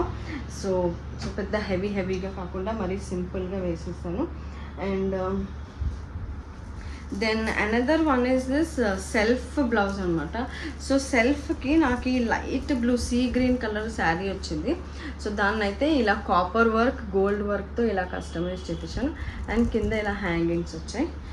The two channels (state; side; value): identical; both; correlation 1.00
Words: సో పెద్ద హెవీగా కాకుండా మరీ సింపుల్గా వేసేసాను. And then another one is this self blouse అనమాట. సో సెల్ఫ్కి నాకు ఈ light blue sea green colour sari వచ్చింది. సో దాన్ని అయితే ఇలా కాపర్ వర్క్ గోల్డ్ వర్క్తో ఇలా కస్టమైజ్ చేయించాను. అండ్ కింద ఇలా హ్యాంగింగ్స్ వచ్చాయి.